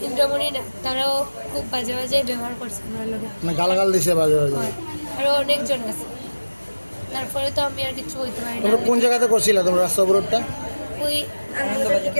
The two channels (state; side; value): inverted; both; correlation -1.00